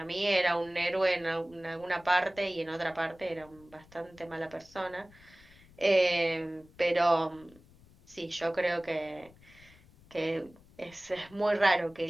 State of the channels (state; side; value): noise; left; rumble, 25 dB below the sound